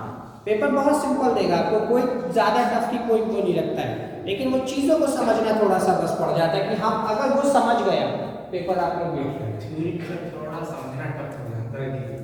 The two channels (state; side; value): identical; both; correlation 1.00